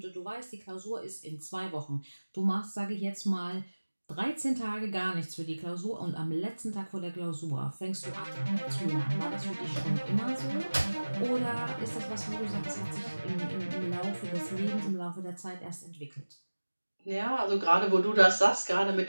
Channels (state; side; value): inverted; both; correlation -1.00